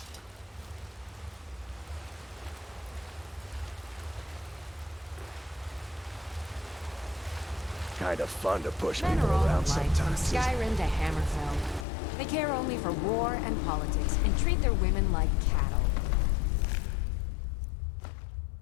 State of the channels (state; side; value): drops out; right; at 11.9 s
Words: Kind of fun to push Men people are all around alike, from sometimes. Skyrim to Hammerfell. They care only for war and politics, and treat their women like cattle.